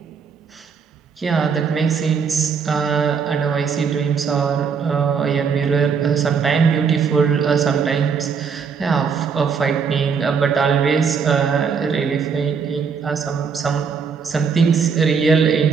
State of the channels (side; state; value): left; quieter; 6.1 dB